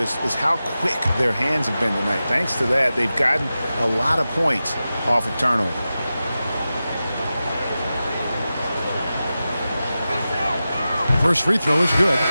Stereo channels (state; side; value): inverted; both; correlation -0.93